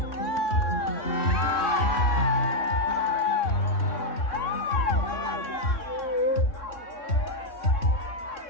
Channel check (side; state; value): right; late; 3.6 ms